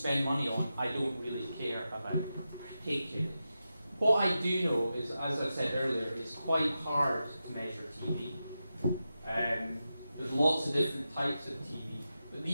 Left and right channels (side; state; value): both; inverted; correlation -0.90